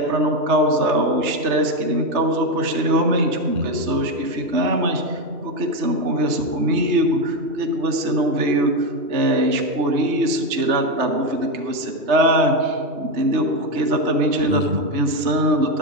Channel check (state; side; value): late; left; 3.2 ms